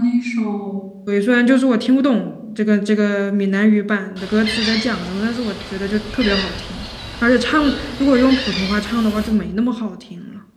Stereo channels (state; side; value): identical; both; correlation 1.00